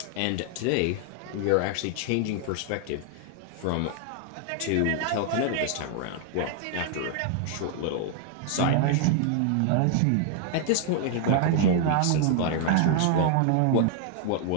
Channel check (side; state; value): both; different; correlation 0.00